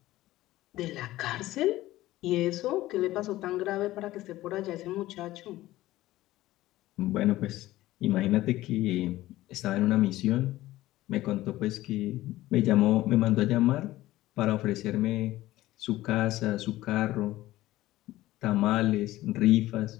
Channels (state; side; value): quieter; right; 16.3 dB